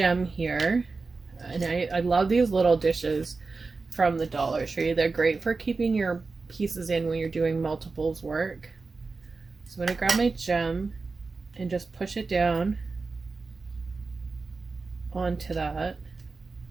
here, and I love these little dishes from the Dollar Tree. They're great for keeping your pieces in when you're doing multiples work. So I'm going to grab my gem and just push it down onto that.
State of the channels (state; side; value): quieter; left; 4.1 dB